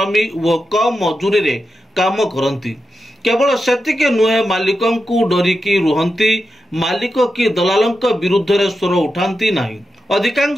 व कम मजूरी रे काम करती। केवल सेतिक नुहे, मालिकों को डरिकी रुहंती, मालिक की दलालंक विरुद्ध रे स्वर उठांती नहीं।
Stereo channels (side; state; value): both; normal; correlation 0.89